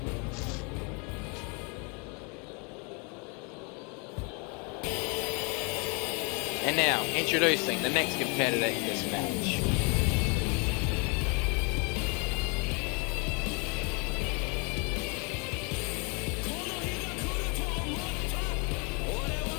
And now, introducing the next competitor in this match.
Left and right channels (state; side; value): quieter; right; 33.3 dB